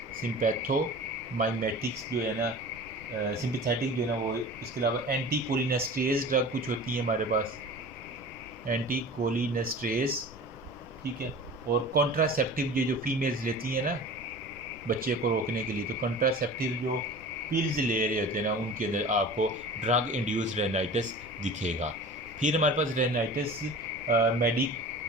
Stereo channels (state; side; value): noise; left; rumble, 20 dB below the sound